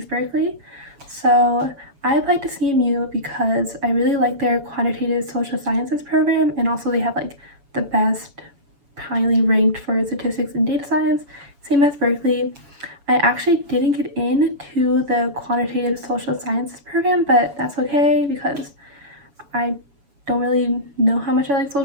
Berkeley. So I applied to CMU because I really like their quantitative social sciences program, and also they have like the best highly ranked for statistics and data science, same as Berkeley. I actually didn't get into the quantitative social sciences program, but that's okay because I don't really know how much I like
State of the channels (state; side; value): late; left; 7.1 ms